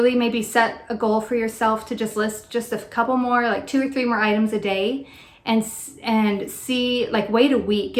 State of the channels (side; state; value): both; identical; correlation 1.00